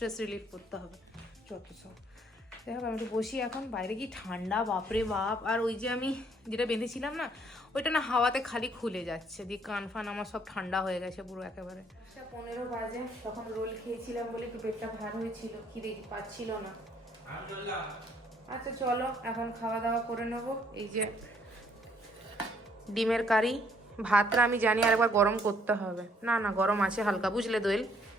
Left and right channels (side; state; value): both; normal; correlation 0.65